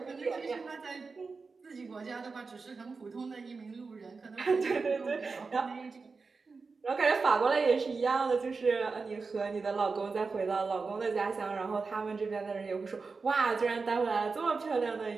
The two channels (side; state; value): left; quieter; 4.5 dB